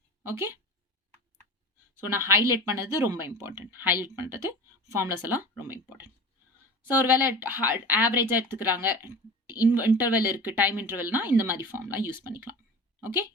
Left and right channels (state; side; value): normal; both; correlation 0.34